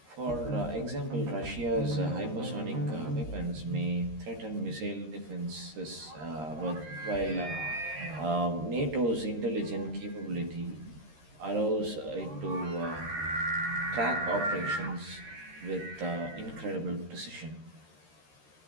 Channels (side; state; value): left; late; 13 ms